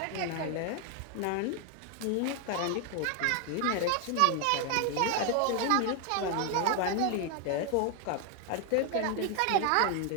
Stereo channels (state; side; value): different; both; correlation 0.01